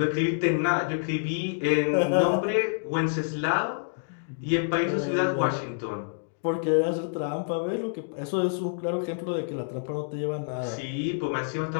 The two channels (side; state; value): right; silent; digital silence